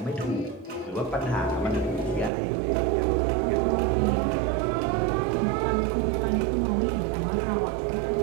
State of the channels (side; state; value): left; drops out; at 2.3 s